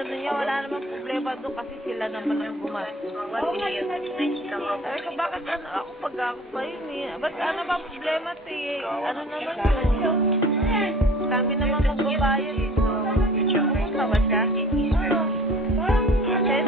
niya wala namang problema doon kasi sila naman ang gumastos. Oo nga, Sabi ko, bakit ano ako pag ako pa yun eh? Ba't ano ba ang problema eh? Ano naman yun? Kami naman magbabayad eh. Pumunta ba siya?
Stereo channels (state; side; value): normal; both; correlation 0.46